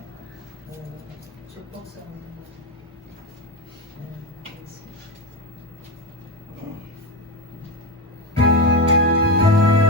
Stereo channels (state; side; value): normal; both; correlation 0.15